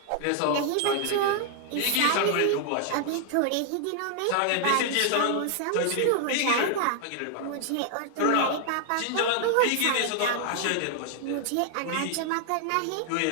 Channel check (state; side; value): different; both; correlation 0.00